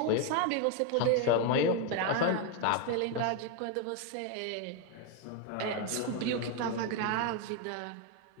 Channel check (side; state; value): both; different; correlation 0.01